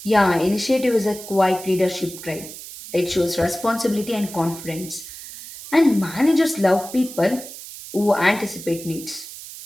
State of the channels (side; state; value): right; noise; hiss, 13 dB below the sound